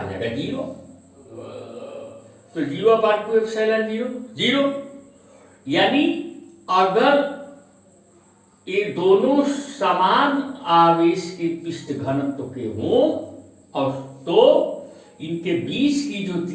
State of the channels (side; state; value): both; identical; correlation 1.00